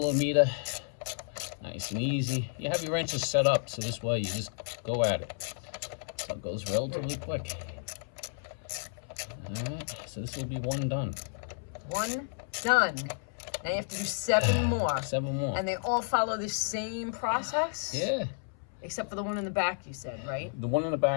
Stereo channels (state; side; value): silent; right; 57 dB below the other